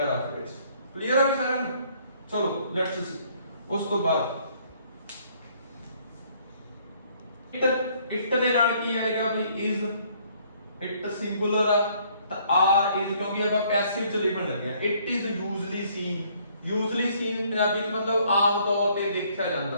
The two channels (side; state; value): both; inverted; correlation -0.63